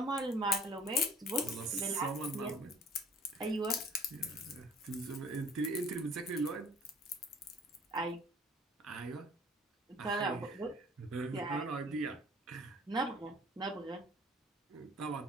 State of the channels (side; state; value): both; normal; correlation 0.51